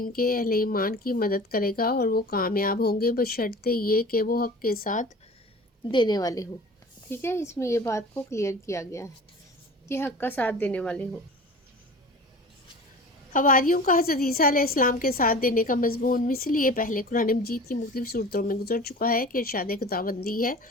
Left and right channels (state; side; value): normal; both; correlation 0.39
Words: کے اہل ایمان کی مدد کرے گا اور وہ کامیاب ہوں گے بشرطے یہ کہ وہ حق کے ساتھ دینے والے ہوں۔ ٹھیک ہے، اس میں یہ بات کو کلیئر کیا گیا ہے کہ حق کا ساتھ دینے والے ہوں۔ حواریوں کا حضرت عیسیٰ علیہ السلام کے ساتھ دینے کا مضمون مثل یہ پہلے قرآن مجید کی مختلف صورتوں میں گزر چکا ہے کہ ارشاد خداوندی ہے،